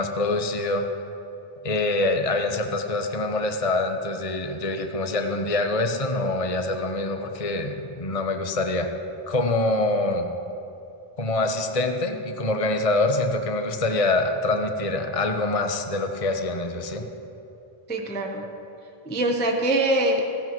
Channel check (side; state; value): right; late; 1.6 ms